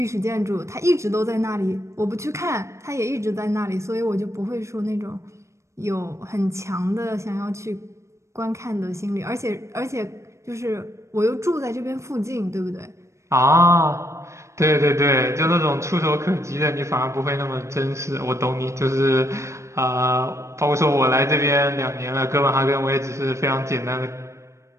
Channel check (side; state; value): left; late; 0.14 ms